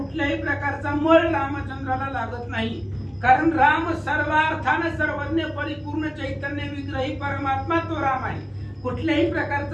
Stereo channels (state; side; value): identical; both; correlation 1.00